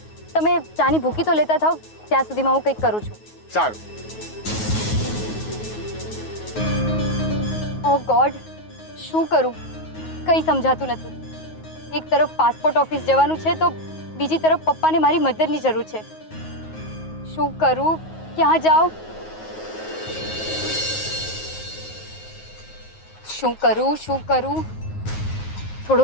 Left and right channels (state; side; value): late; right; 9.4 ms